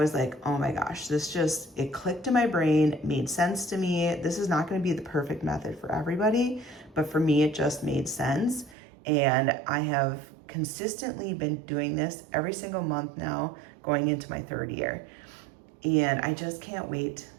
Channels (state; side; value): drops out; left; at 8.8 s